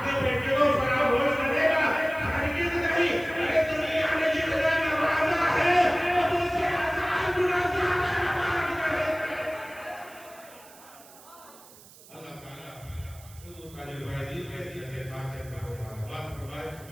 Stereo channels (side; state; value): right; noise; hiss, 22 dB below the sound